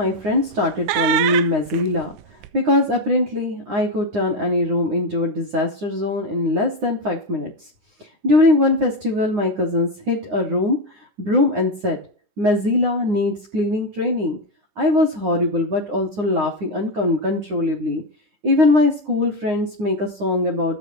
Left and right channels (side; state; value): left; late; 9.6 ms